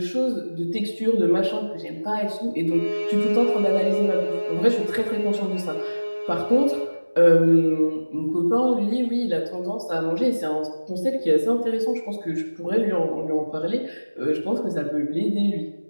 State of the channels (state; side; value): inverted; both; correlation -1.00